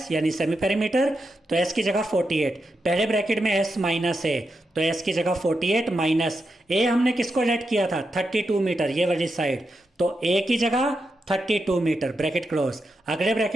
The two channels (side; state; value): both; normal; correlation 0.86